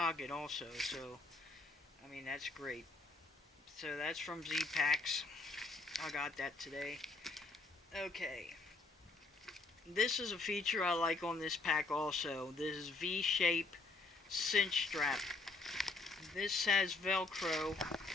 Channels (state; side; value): quieter; right; 3.5 dB